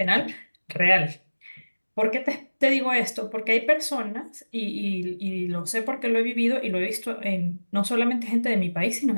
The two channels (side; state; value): both; inverted; correlation -1.00